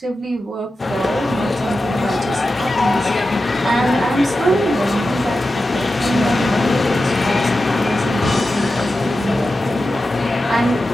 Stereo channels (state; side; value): normal; both; correlation 0.92